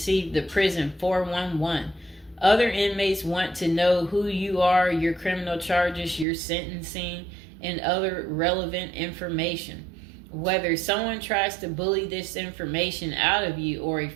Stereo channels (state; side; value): drops out; left; at 6.2 s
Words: the prison 411. Other inmates want to know who you are, your criminal charges, your sentencing, and other relevant information. Whether someone tries to bully this information out of you or a